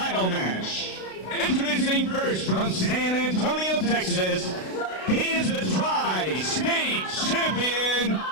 match. Introducing first from San Antonio, Texas, he is the Tri-State Champion,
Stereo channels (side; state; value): right; late; 32 ms